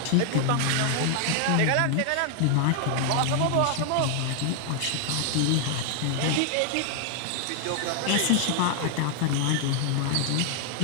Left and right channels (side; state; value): both; different; correlation 0.00